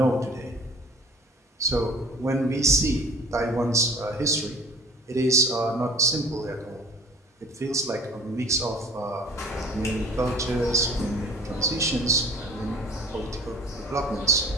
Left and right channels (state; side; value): normal; both; correlation 0.46